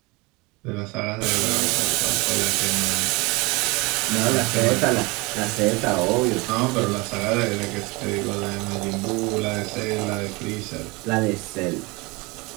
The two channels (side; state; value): left; quieter; 25.2 dB